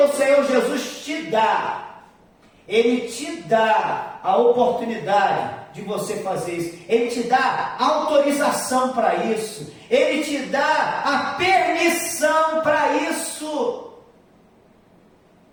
Senhor Jesus te dá. Ele te dá a oportunidade de você fazer isso. Ele te dá autorização para isso. Ele te dá a permissão para isso.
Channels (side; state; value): both; identical; correlation 1.00